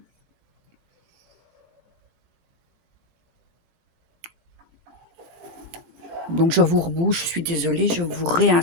Donc je vous rebouche, je suis désolée, je vous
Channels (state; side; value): late; left; 17 ms